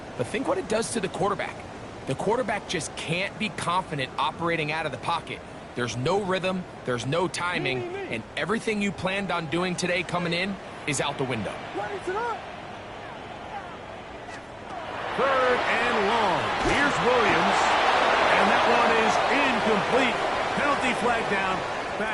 but think what it does to the quarterback. The quarterback just can't be confident operating out of the pocket. There's no rhythm, there's no timing, and everything you planned on doing today coming in is out the window. What is it? 3rd and long. Here's Williams, and that one is incomplete. Penalty flag down,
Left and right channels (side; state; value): both; identical; correlation 1.00